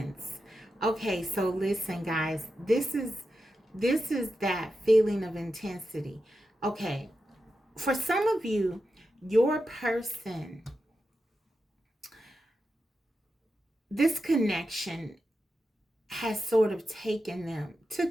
Okay, so listen, guys. This is that feeling of intensity. Okay, for some of you, your person, this connection has sort of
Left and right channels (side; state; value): both; normal; correlation 0.89